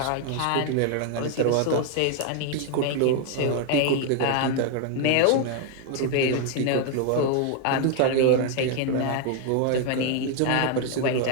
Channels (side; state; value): both; different; correlation 0.00